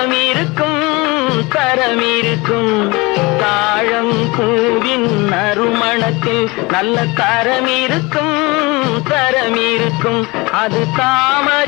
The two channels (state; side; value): quieter; right; 24.4 dB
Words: இருக்கும் தரம் இருக்கும். தாழம் பூவின் நறுமணத்தில் நல்ல தரம் இருக்கும் தரம் இருக்கும். அது